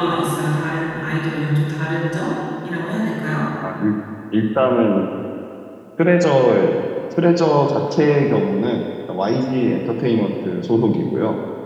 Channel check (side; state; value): both; identical; correlation 1.00